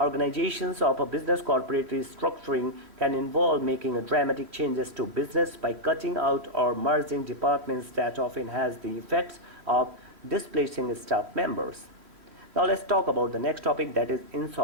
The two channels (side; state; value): left; late; 3.1 ms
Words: of a business. Corporate restructuring can involve making dramatic changes to business by cutting out or merging departments that often has the effects of displacing staff members. Now let's talk about the next topic, that is